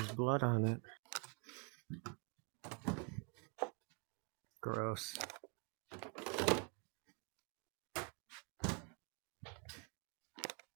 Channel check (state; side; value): quieter; left; 34.8 dB